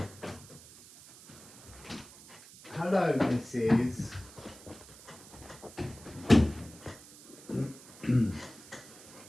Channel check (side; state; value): right; noise; hiss, 19 dB below the sound